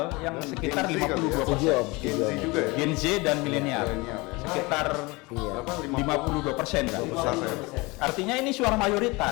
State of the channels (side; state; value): right; quieter; 24.4 dB